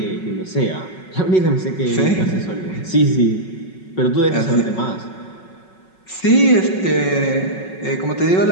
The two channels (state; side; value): late; right; 5.4 ms